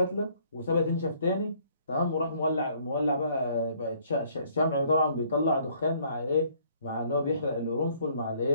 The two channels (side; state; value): both; inverted; correlation -0.62